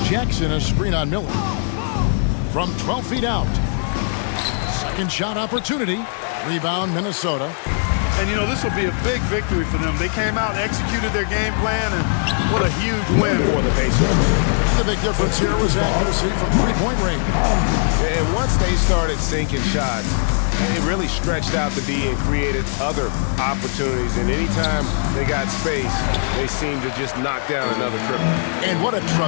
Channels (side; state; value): right; silent; 66 dB below the other